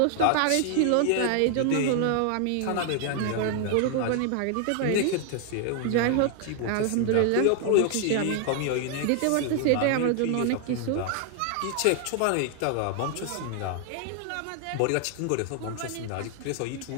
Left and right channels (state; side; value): different; both; correlation 0.00